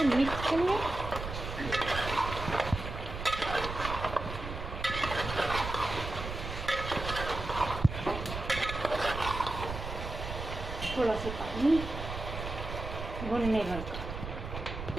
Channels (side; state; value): right; noise; rumble, 7 dB below the sound